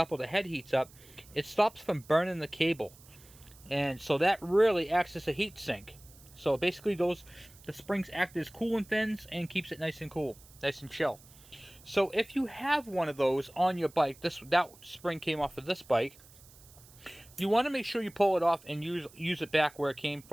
or the head heats up, it stops from burning the cable. And so that really acts as a heat sink. So basically the springs act as coolant fins and keeps it nice and cool, nice and chill. So if you have one of those on your bike, that spring came off of this bike, you want to make sure you pull it off and use it back where it came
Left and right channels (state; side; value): noise; right; hiss, 23 dB below the sound